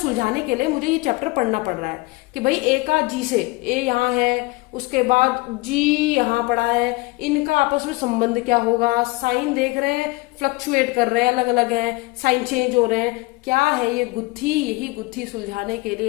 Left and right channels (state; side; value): quieter; right; 23.1 dB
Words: के लिए मुझे ये चैप्टर पढ़ना पड़ रहा है कि भाई ए का जी से, ए यहाँ है, उसके बाद जी यहाँ पड़ा है, इनका आपस में संबंध क्या होगा, साइन देख रहे हैं फ्लक्चुएट कर रहे हैं, अलग अलग हैं, साइन चेंज हो रहे हैं, क्या है ये गुत्थी, यही गुत्थी सुलझाने के